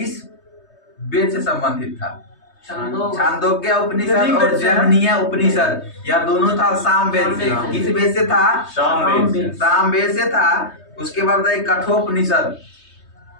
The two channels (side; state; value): right; late; 3.2 ms